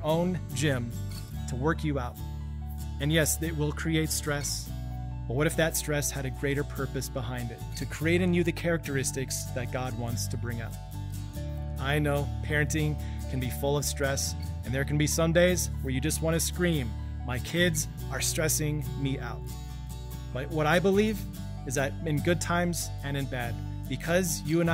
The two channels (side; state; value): both; identical; correlation 1.00